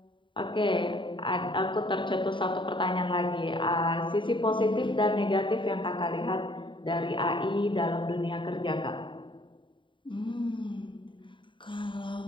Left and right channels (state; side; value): late; right; 0.24 ms